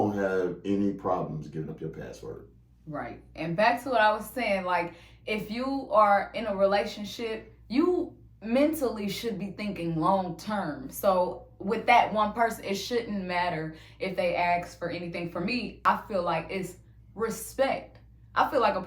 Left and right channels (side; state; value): both; identical; correlation 1.00